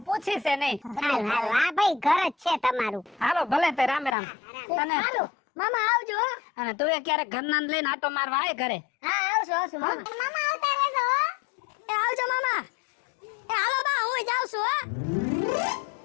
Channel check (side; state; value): right; drops out; at 4.2 s